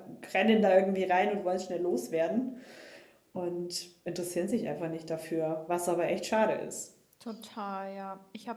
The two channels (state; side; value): identical; both; correlation 1.00